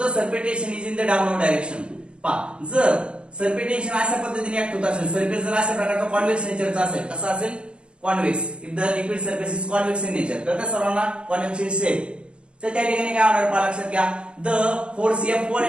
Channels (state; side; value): late; left; 0.056 ms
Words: surface tension is in the downward direction पहा जर सरफेस टेन्शन अशा पद्धतीने ऍक्ट होत असेल सरफेस जर अशा प्रकारचा कॉन्व्हेक्स नेचरचा असेल कसा असेल convex if the liquid surface is convex in nature तर त्या सर्वांना कॉन्व्हेक्स इन शेप तर त्या ठिकाणी काय होणार पहा लक्षात घ्या the force F1